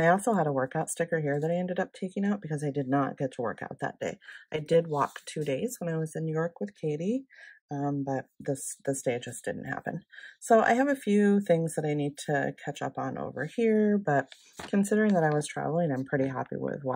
also had a workout sticker here that I ended up taking out because I did not get to work out that day. I did walk 2 days when I was in New York with Katie, but this day just didn't happen. So I have a few things that I need to catch up on over here, but considering that I was traveling, I'm pretty happy with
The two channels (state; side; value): identical; both; correlation 1.00